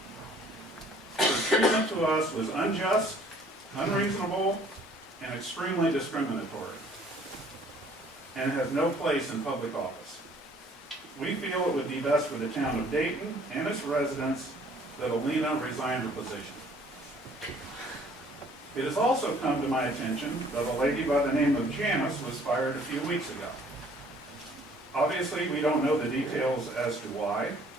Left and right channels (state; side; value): normal; both; correlation 0.57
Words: Her treatment to us was unjust, unreasonable, and extremely discriminatory, and has no place in public office. We feel it would be best for the town of Dayton and its residents that Alina resign her position. It has also come to my attention that a lady by the name of Janice was fired a few weeks ago. Obviously, we don't know the details as to why.